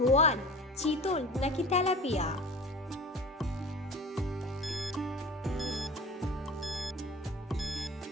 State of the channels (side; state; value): both; normal; correlation 0.38